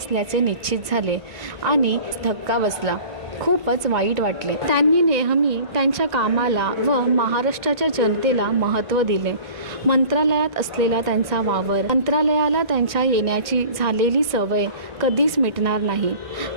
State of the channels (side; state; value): left; late; 1.9 ms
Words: निश्चित झाले आणि धक्का बसला. खूपच वाईट वाटले. त्यांनी नेहमी त्यांच्या कामाला व महाराष्ट्राच्या जनतेला महत्त्व दिले. मंत्रालयात असलेला त्यांचा वावर, मंत्रालयाला त्यांच्या येण्याची झालेली सवय कधीच मिटणार नाही.